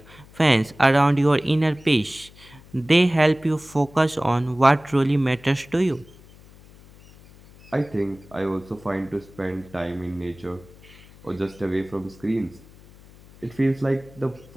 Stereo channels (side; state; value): left; noise; hum, 23 dB below the sound